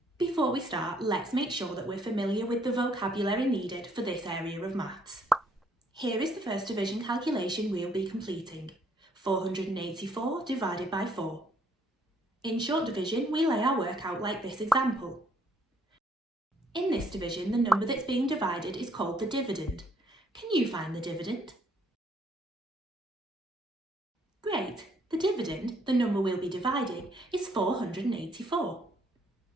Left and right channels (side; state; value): both; normal; correlation 0.67